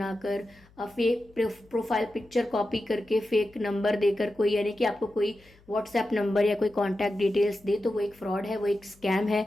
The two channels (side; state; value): left; noise; hum, 28 dB below the sound